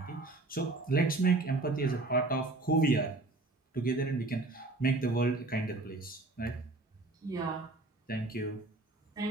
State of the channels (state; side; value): quieter; left; 3.1 dB